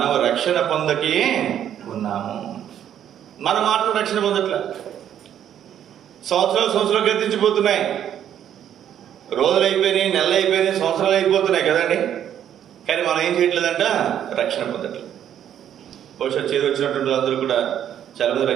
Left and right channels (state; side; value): quieter; left; 10.1 dB